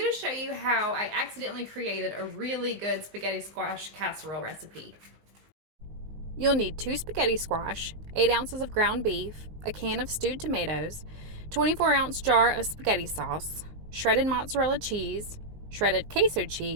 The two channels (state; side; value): late; left; 19 ms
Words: to show you how I accidentally created a really good spaghetti squash casserole recipe. You'll need 2 spaghetti squash, 8 ounces of ground beef, a can of stewed tomatoes, 24-ounce jar of spaghetti sauce, shredded mozzarella cheese, shredded queso